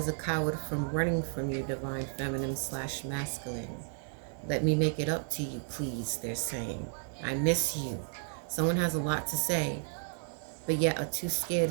a coward from running from you, divine feminine / masculine. Let me make it up to you, please, they're saying. I miss you. Someone has a lot to say, but yet are too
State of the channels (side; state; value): left; silent; 56 dB below the other